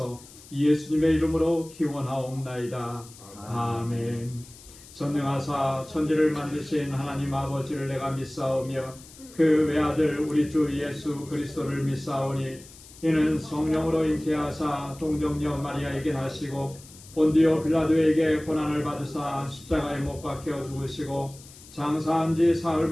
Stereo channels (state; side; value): noise; left; hiss, 20 dB below the sound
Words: 예수님의 이름으로 기원하옵나이다. 아멘. 전능하사 천지를 만드신 하나님 아버지를 내가 믿사오며 그 외아들 우리 주 예수 그리스도를 믿사오니 이는 성령으로 잉태하사 동정녀 마리아에게 나시고 본디오 빌라도에게 고난을 받으사 십자가에 못 박혀 죽으시고 장사한 지 사흘